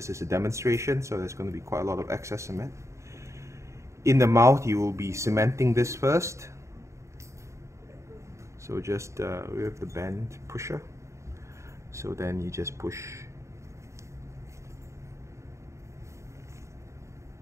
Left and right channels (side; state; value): left; late; 0.14 ms